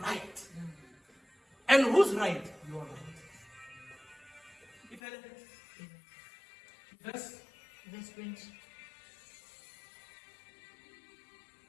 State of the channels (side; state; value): right; drops out; at 5.0 s